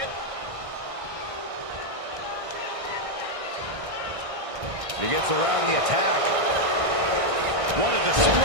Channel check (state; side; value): late; left; 1.6 ms